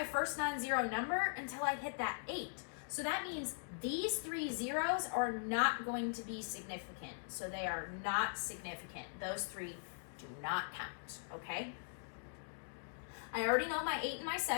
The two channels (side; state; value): right; silent; digital silence